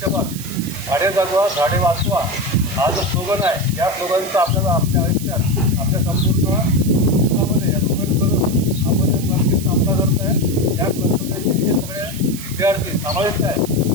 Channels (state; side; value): noise; right; hiss, 12 dB below the sound